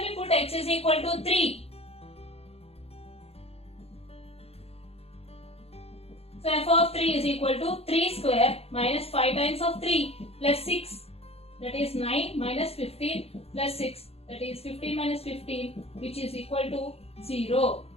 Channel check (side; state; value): right; late; 0.29 ms